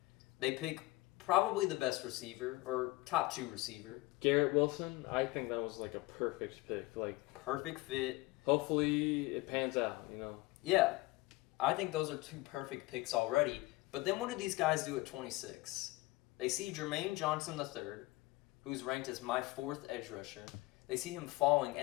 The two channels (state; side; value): quieter; right; 20.8 dB